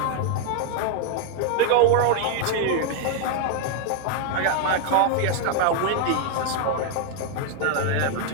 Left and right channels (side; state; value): both; different; correlation 0.00